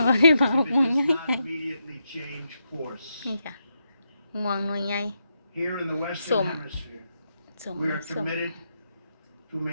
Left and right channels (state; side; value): inverted; both; correlation -0.83